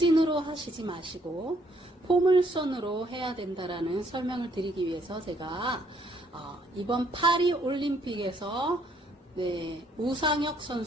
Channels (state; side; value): normal; both; correlation 0.67